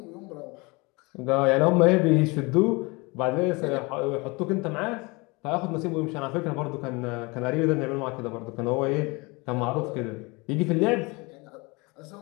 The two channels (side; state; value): right; quieter; 26.4 dB